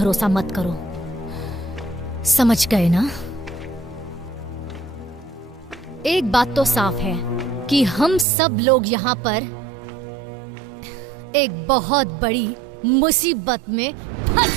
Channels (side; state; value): left; drops out; at 8.2 s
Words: मत करो, समझ गए ना? एक बात तो साफ है कि हम सब लोग यहाँ पर एक बहुत बड़ी मुसीबत में